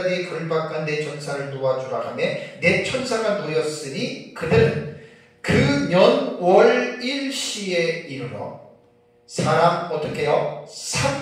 걸박한 내 천사를 도와주라 하며 내 천사가 놓였으니 그들은 그 년 월 일시에 이르러 사람 어떻게 해요?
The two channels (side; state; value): both; identical; correlation 1.00